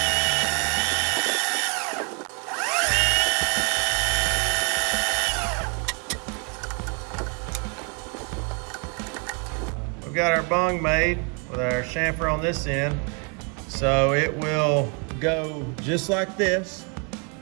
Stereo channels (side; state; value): left; quieter; 36.7 dB